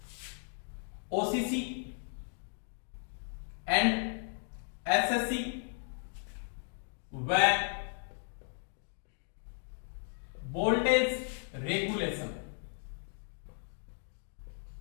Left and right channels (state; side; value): silent; right; 54 dB below the other